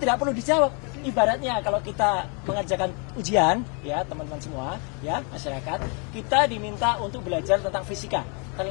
perlu dijawab. Ibaratnya kalau kita mengerjakan ujian, ya teman-teman semua, ya masyarakat, kita diminta untuk belajar tentang fisika.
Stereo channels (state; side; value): quieter; right; 36.0 dB